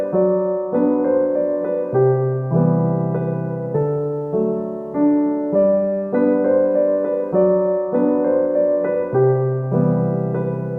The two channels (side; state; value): both; identical; correlation 1.00